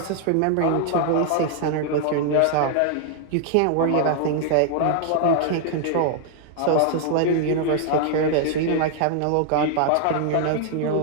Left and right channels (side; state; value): both; different; correlation 0.00